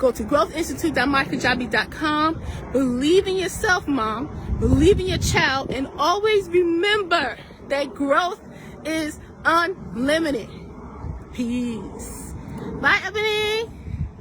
to growthinstitute.mykajabi.com. Believe in yourself, mom. Believe in your child. And always remember that growth is unlimited. Peace. Bye, Ebony.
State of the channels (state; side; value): identical; both; correlation 1.00